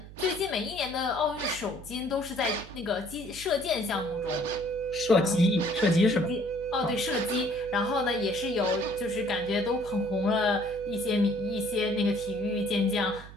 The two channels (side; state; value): right; noise; hum, 16 dB below the sound